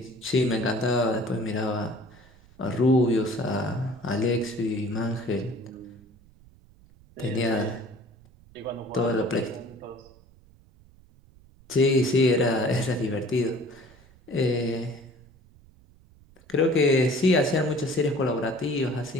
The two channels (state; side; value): noise; right; rumble, 26 dB below the sound